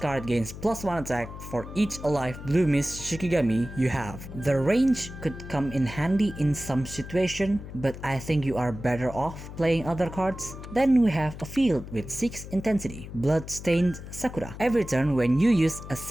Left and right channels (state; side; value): noise; left; hum, 12 dB below the sound